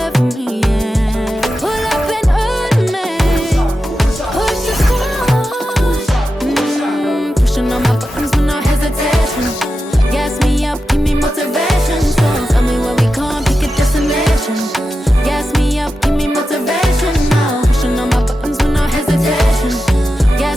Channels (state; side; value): normal; both; correlation 0.91